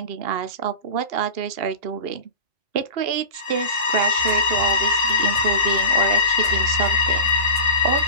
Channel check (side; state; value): left; late; 2.8 ms